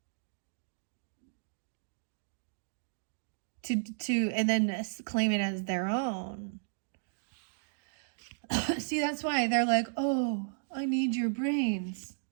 And then claim it as their own. See, that's why they're like, oh, I need your brains.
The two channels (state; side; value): silent; left; digital silence